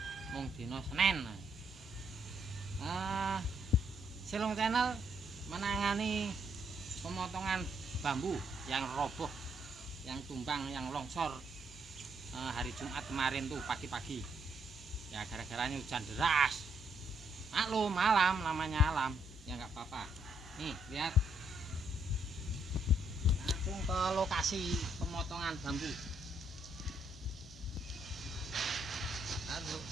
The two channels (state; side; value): normal; both; correlation 0.73